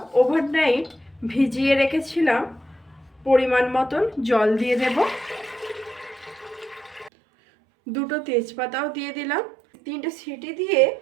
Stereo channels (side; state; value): left; drops out; at 7.1 s